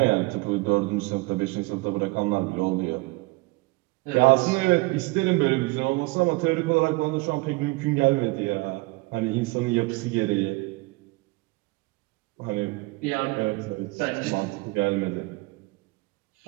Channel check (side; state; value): left; quieter; 24.1 dB